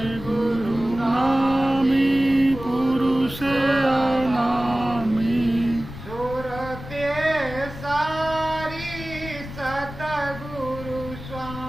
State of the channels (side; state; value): left; noise; rumble, 12 dB below the sound